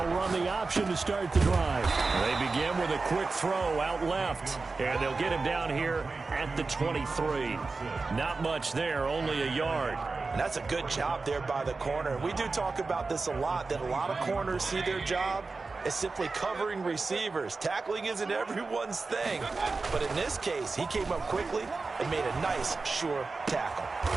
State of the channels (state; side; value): quieter; left; 4.0 dB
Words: run the option to start the drive. They begin with a quick throw out left. And they'll get him down here at the 23. Not much there, only a yard. And that's a good job there by the corner. We do talk about this a lot, that a lot of corners see their job as simply covering receivers. Tackling isn't everyone's thing. But in this case, he came up quickly and made a nice, sure tackle.